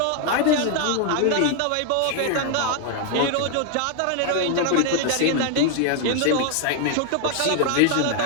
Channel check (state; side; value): different; both; correlation 0.01